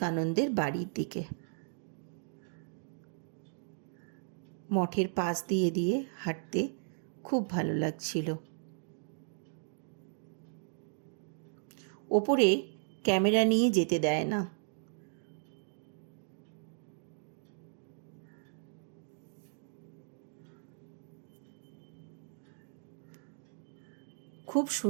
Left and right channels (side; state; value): left; silent; digital silence